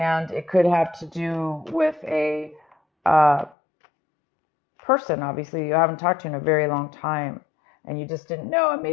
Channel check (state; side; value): drops out; right; at 3.6 s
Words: it could have to do with a person, obviously, you haven't talked to in a very long time, and you just didn't know, and